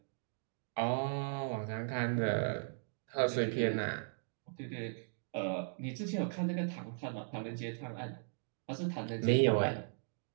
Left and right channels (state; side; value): silent; left; digital silence